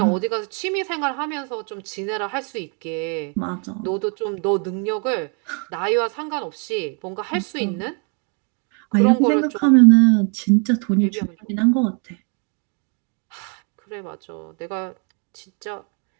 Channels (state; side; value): quieter; left; 38.7 dB